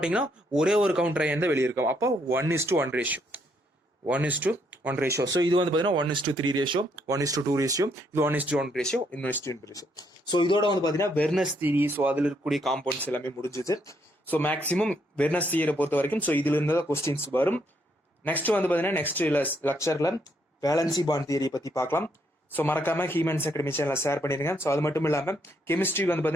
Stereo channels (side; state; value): both; normal; correlation 0.73